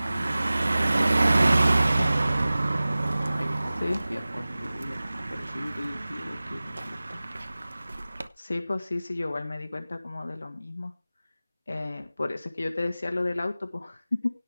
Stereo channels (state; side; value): inverted; both; correlation -0.97